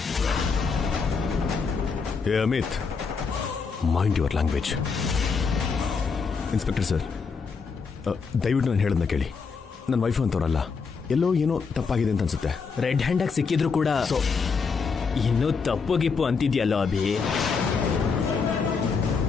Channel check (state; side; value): quieter; right; 5.2 dB